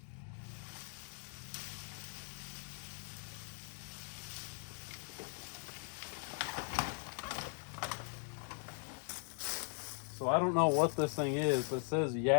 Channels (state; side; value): silent; right; 51 dB below the other